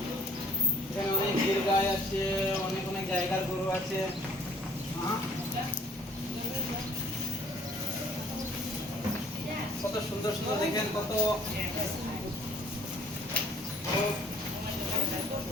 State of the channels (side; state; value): both; normal; correlation 0.57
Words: এখানে অনেক গির গাই আছে, অনেক অনেক জায়গার গরু আছে। কত সুন্দর সুন্দর দেখেন, কত